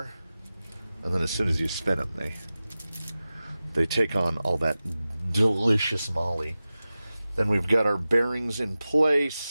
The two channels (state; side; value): inverted; both; correlation -0.96